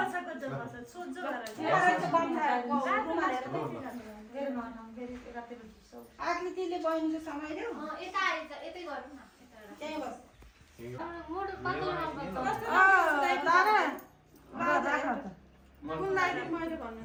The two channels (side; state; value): both; identical; correlation 1.00